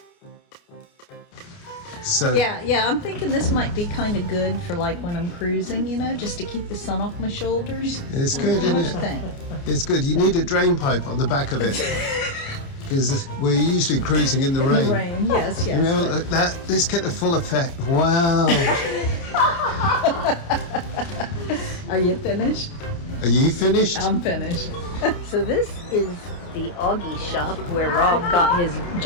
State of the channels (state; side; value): late; right; 29 ms